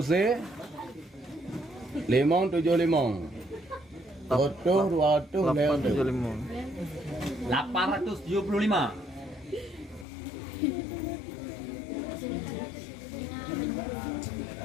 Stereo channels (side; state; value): right; drops out; at 10.1 s